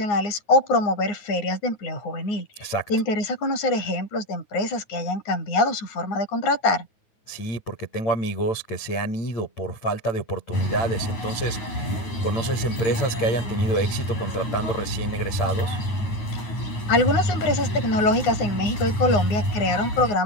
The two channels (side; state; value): right; late; 9.6 ms